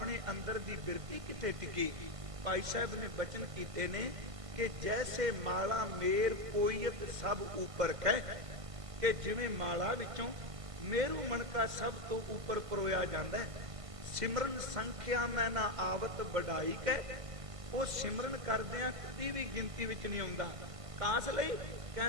ਅੰਦਰ ਦੀ ਬਿਰਤੀ ਕਿੱਥੇ ਟਿਕੀ। ਭਾਈ ਸਾਹਿਬ ਨੇ ਬਚਨ ਕੀਤੇ ਨੇ ਕਿ ਜੈਸੇ ਮਾਲਾ ਮੇਰ ਪੋਇਤ ਸਭ ਉੱਪਰ ਕਹਿ, ਕਿ ਜਿਵੇਂ ਮਾਲਾ ਵਿੱਚੋਂ ਮੇਰੂ ਮਣਕਾ ਸਭ ਤੋਂ ਉੱਪਰ ਪਰੋਇਆ ਜਾਂਦਾ ਹੈ। ਸਿਮਰਨ ਸੰਖਿਆ ਮੈਂ ਨਾ ਆਵਤ ਵਡਾਈ ਕਹਿ, ਉਹ ਸਿਮਰਨ ਕਰਦਿਆਂ ਕਦੀ ਵੀ ਗਿਣਤੀ ਵਿੱਚ ਨਹੀਂ ਆਉਂਦਾ। ਕਾਸ ਲਈ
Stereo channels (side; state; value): left; late; 1.5 ms